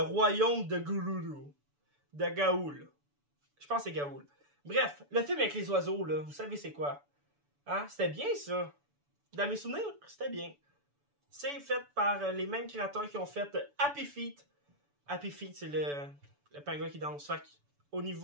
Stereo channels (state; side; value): late; left; 6.9 ms